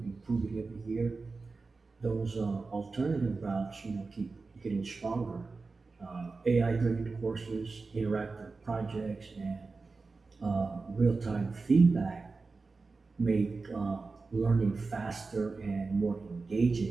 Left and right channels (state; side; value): quieter; left; 4.0 dB